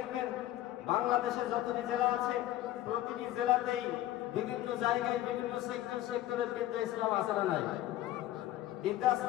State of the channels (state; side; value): quieter; right; 14.2 dB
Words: বাংলাদেশে যতটি জেলা আছে, প্রতিটি জেলাতেই বিভিন্ন জায়গায় বিভিন্ন সেক্টরের বৃদ্ধাশ্রম আছে না নাই?